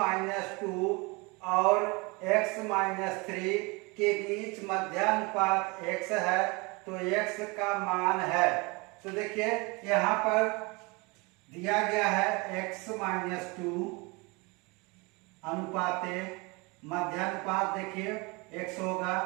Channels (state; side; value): quieter; left; 27.3 dB